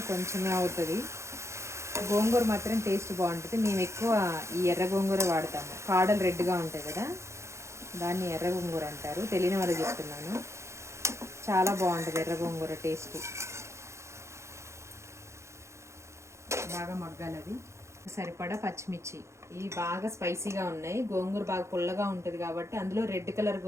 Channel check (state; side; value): late; left; 0.14 ms